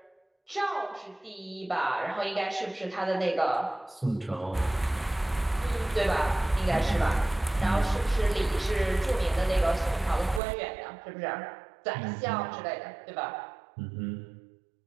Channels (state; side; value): drops out; left; at 10.4 s